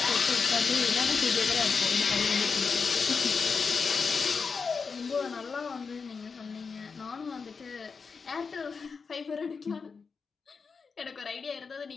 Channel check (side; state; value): right; quieter; 5.2 dB